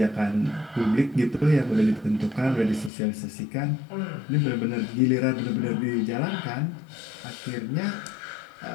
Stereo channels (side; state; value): right; drops out; at 2.9 s